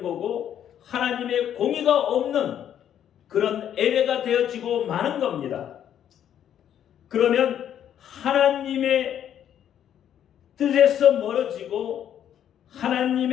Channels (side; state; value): right; quieter; 10.0 dB